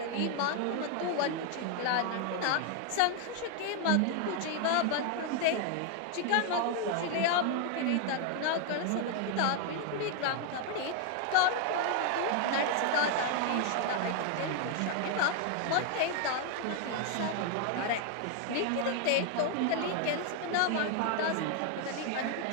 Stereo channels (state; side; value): different; both; correlation 0.00